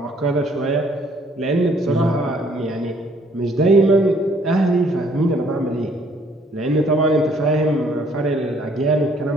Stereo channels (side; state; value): both; normal; correlation 0.62